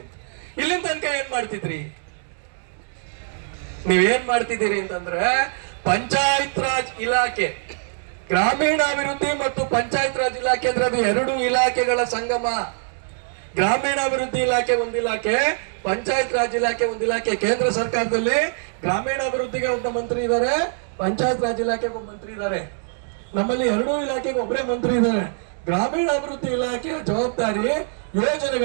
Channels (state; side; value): silent; left; 63 dB below the other